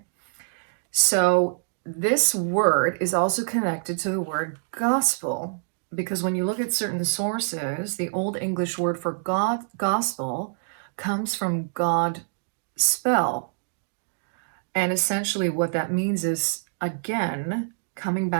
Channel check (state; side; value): silent; left; digital silence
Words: So this word is also connected to the word gospel, because when you look at certain sources, the Old English word for God, gospel, comes from God spell. And essentially what that means is, again, coming